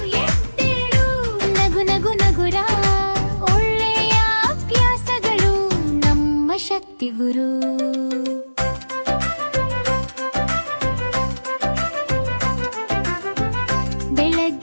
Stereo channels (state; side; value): inverted; both; correlation -1.00